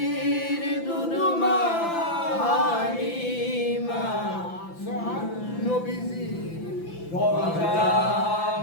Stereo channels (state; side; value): late; right; 5.9 ms